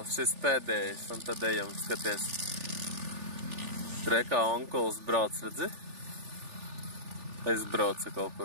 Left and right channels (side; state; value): left; late; 3.4 ms